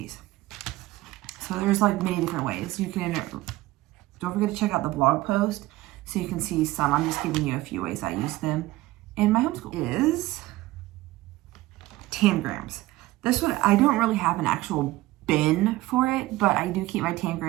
So there's like many different ways. You can, don't forget to check out the blog post so you can see some. I'm just giving you a few ways I use them in my homeschool. Is Tangrams. This one, I don't really have an actual bin for it, but I do keep my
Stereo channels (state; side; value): quieter; left; 18.0 dB